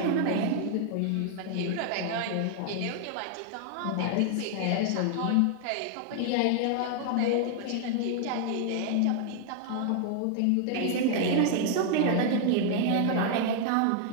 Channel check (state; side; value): different; both; correlation 0.00